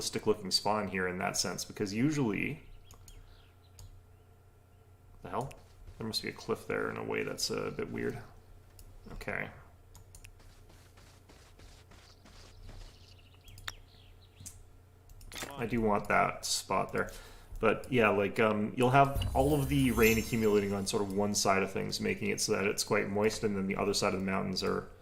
looking spawn here in that sense, because usually... The hell? There must be a cliff there in a way that's a bit weird. Okay. I do want that spot there. But yeah, like, you'll have all of the rain accumulating on sort of one side of things, making it so that it's quite moist, and then the other side of the mountains are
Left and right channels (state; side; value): identical; both; correlation 1.00